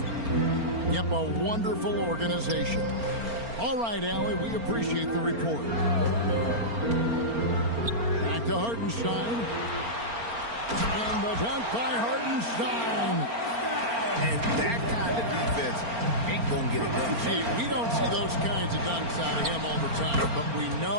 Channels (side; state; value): left; late; 4.4 ms